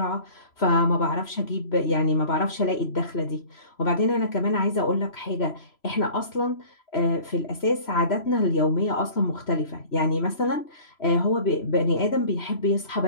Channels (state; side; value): late; right; 3.0 ms